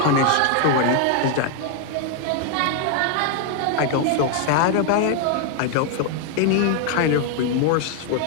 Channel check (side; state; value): both; different; correlation 0.00